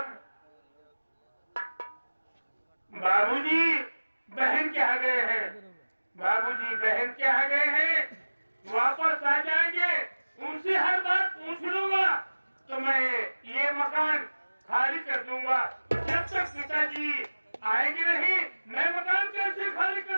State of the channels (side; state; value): both; inverted; correlation -1.00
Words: बाबूजी बहन के यहाँ गए हैं। बाबूजी बहन के यहाँ गए हैं, वापस आ जाएंगे। उनसे हर बात पूछ लूंगा तो तो मैं ये मकान खाली कर दूंगा। जब तक पिताजी आएंगे नहीं, मैं मकान कैसे खाली कर